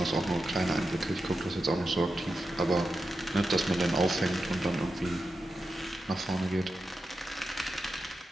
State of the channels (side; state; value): both; normal; correlation 0.89